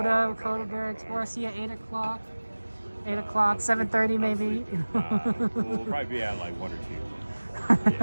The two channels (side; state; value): both; inverted; correlation -1.00